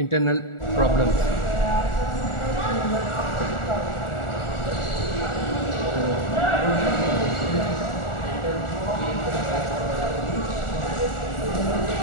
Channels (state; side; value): late; right; 1.4 ms